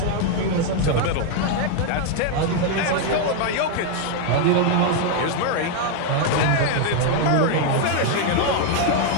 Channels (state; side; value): different; both; correlation 0.01